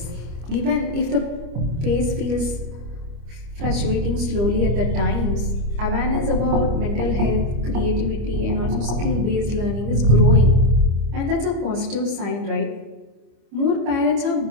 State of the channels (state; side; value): late; left; 25 ms